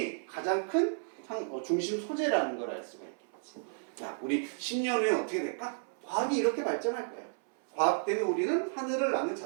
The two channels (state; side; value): silent; left; 56 dB below the other